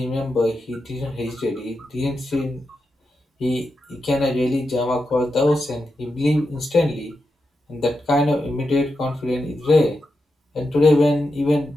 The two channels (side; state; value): both; normal; correlation 0.87